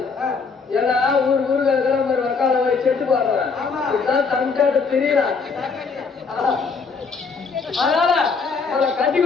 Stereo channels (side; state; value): right; quieter; 4.9 dB